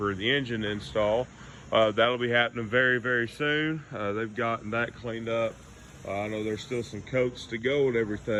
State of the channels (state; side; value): identical; both; correlation 1.00